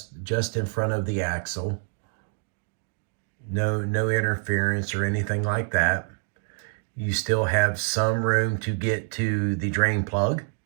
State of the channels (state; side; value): silent; left; 57 dB below the other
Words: just in front of the axle. No interference or anything like that. You still have some room to get to the drain plug.